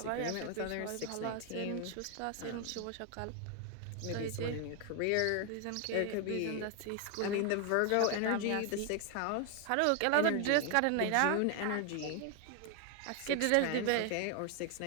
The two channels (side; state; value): both; different; correlation 0.01